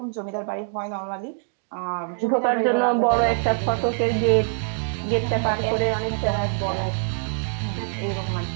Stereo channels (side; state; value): left; silent; 62 dB below the other